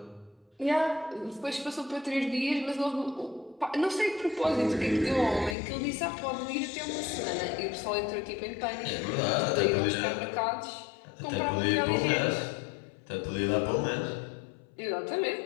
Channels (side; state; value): right; drops out; at 5.6 s